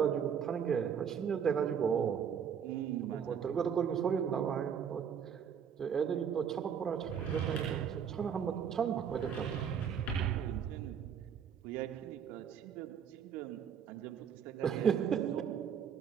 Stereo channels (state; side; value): quieter; left; 7.7 dB